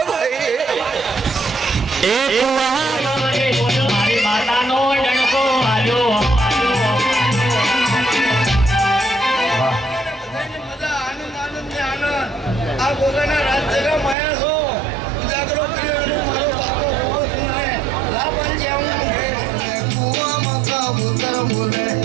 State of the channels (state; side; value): drops out; left; at 14.2 s